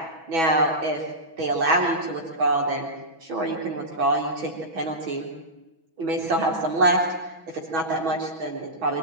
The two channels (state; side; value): late; left; 6.1 ms